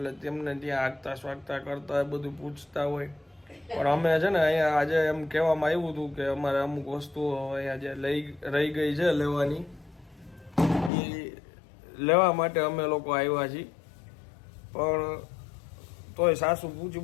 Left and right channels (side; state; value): right; drops out; at 10.9 s